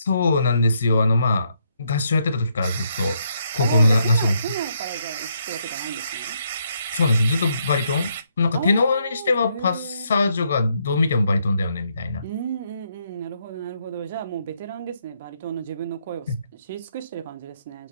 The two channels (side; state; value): both; inverted; correlation -0.75